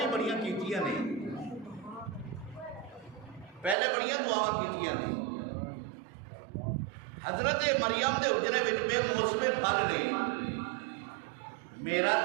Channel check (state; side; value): drops out; left; at 3.8 s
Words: ہی بڑیاں کیتیاں نے، پہلے بڑیاں دعاواں کیتیاں نے، حضرت مریم دے حجرے وچ بے موسم پھل نے، میرا